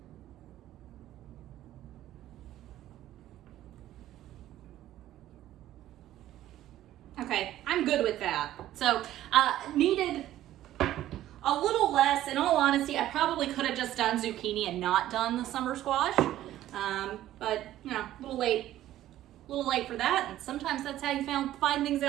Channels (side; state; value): left; quieter; 13.5 dB